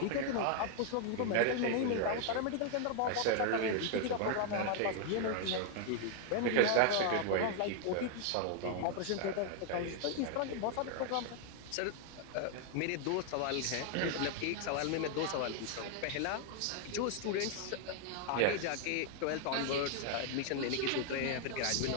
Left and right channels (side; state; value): both; different; correlation 0.00